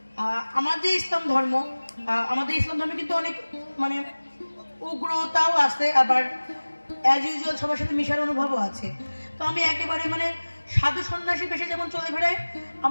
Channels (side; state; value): both; inverted; correlation -1.00